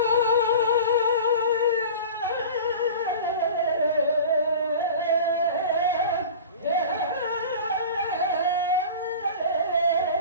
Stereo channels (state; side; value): inverted; both; correlation -0.37